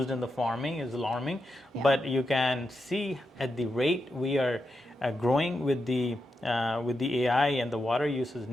in the farming is alarming, but you can see at the rate we are growing with the AI and the water use is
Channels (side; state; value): both; normal; correlation 0.86